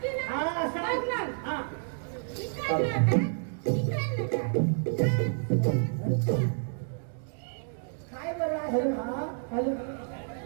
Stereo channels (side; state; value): left; silent; 58 dB below the other